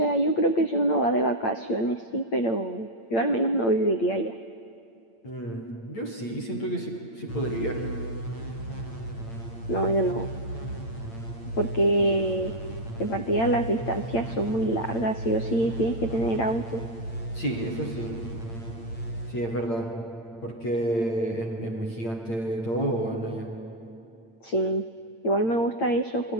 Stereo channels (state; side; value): late; right; 8.8 ms